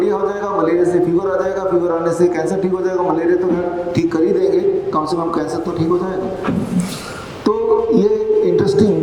हो जाएगा, मलेरिया से फीवर आ जाएगा, फीवर आने से कैंसर ठीक हो जाएगा, मलेरिया तो ठीक कर ही देंगे, कम से कम कैंसर तो ठीक हो जाएगा। तो ये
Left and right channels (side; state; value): both; identical; correlation 1.00